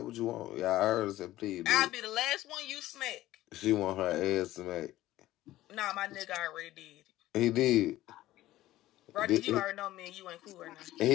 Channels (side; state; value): right; quieter; 15.5 dB